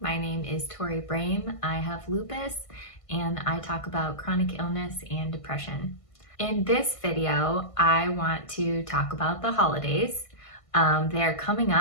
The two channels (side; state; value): right; late; 1.5 ms